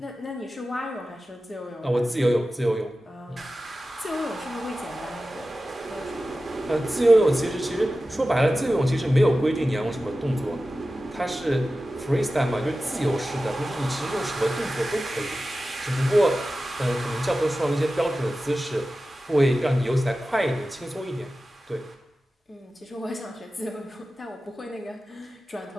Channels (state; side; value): normal; both; correlation 0.94